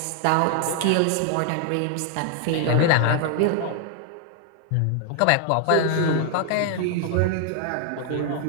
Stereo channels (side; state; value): both; different; correlation 0.00